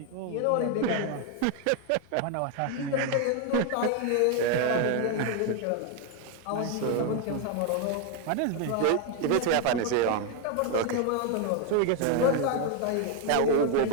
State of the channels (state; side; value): different; both; correlation 0.01